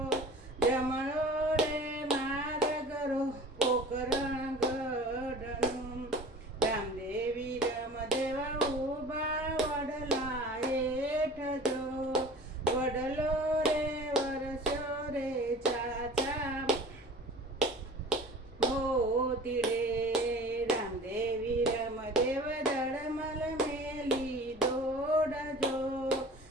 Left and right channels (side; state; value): both; normal; correlation 0.42